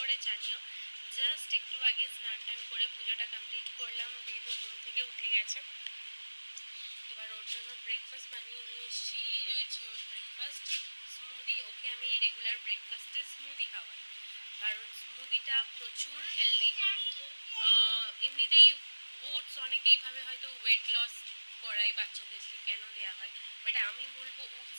জানিও। জাস্ট একটু আগে স্নান টান করে পুজোটা কমপ্লিট করলাম, বেবি ঘুম থেকে উঠে গেছে। এবার ওর জন্য ব্রেকফাস্ট বানিয়ে নিয়ে এসেছি। এই রয়েছে ওর ব্রেকফাস্ট, স্মুদি। ওকে আমি রেগুলার ব্রেকফাস্টে স্মুদি খাওয়াই, কারণ স্মুদিটা প্রচুর হেলদি। এমনিতেই ওটস অনেকেই ভাবে হয়তো ওয়েট লস করাই বাচ্চাদেরকে, কেন দেওয়া হয়, বাট আমি বলবো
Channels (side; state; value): both; inverted; correlation -1.00